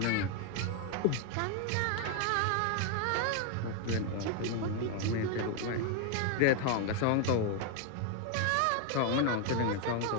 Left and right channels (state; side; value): different; both; correlation 0.01